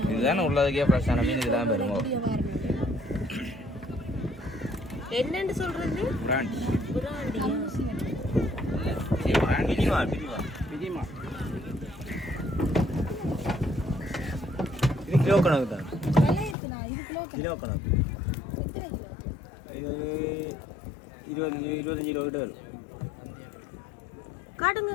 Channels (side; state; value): right; drops out; at 16.6 s